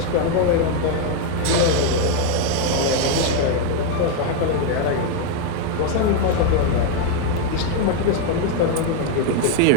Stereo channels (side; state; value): both; different; correlation 0.01